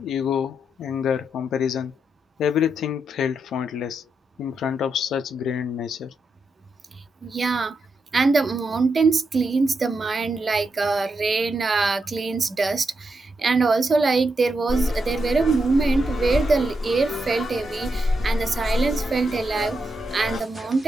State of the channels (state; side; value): normal; both; correlation 0.84